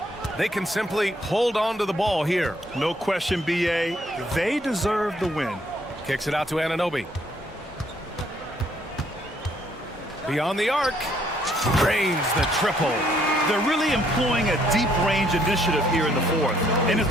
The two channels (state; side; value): normal; both; correlation 0.67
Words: They can simply hold on to the ball here. No question, B.A. They deserve the win. Kicks it out to Anunoby. Beyond the arc. Drains the triple. They're really employing a deep range initiative here in the fourth, and